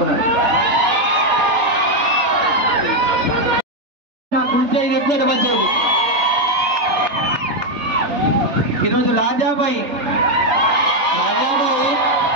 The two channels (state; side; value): late; left; 3.8 ms